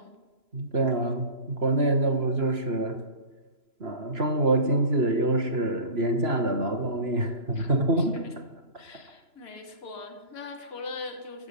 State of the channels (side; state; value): left; late; 2.9 ms